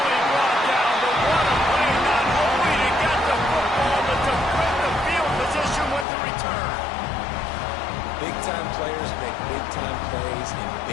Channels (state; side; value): drops out; right; at 6.1 s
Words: brought down, but what a play, not only to get the football, but to put the field position with the return. Big-time players make big-time plays in